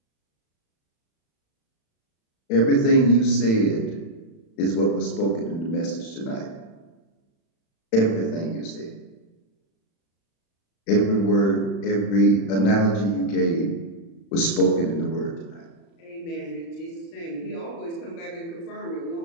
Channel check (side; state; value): right; late; 36 ms